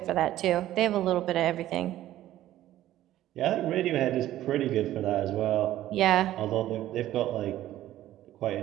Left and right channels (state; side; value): quieter; left; 13.7 dB